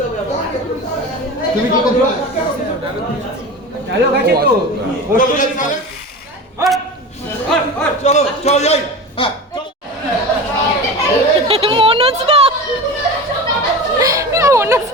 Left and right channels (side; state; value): both; normal; correlation 0.31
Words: তুমি কি করছো? হ্যালো, কাছে তো চলো চলো যাই। হ্যাঁ